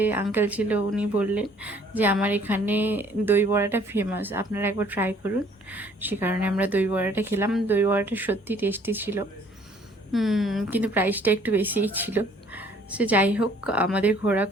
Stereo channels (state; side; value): normal; both; correlation 0.58